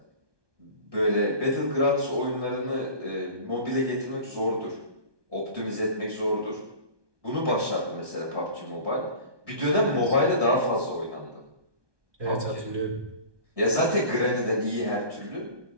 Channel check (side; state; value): left; late; 1.2 ms